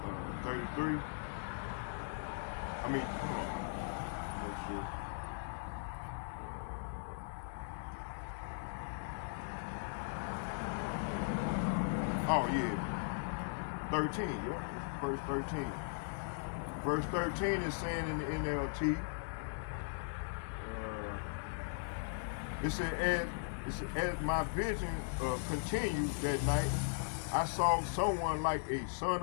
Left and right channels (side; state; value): right; silent; digital silence